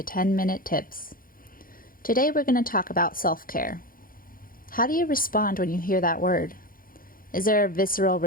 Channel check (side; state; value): right; late; 0.41 ms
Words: 10-Minute Tips. Today we're going to talk about self-care. How do you respond when you hear that word? Is there a visceral